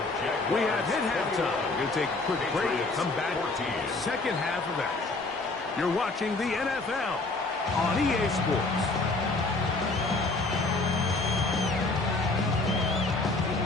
Jaguars. We have hit halftime. We're going to take a quick break and come back. Second half of action. You're watching the NFL on EA Sports.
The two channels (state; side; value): quieter; right; 3.3 dB